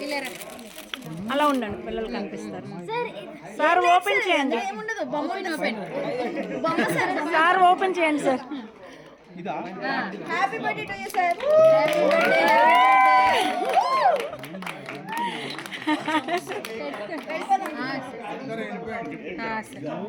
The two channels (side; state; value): both; identical; correlation 1.00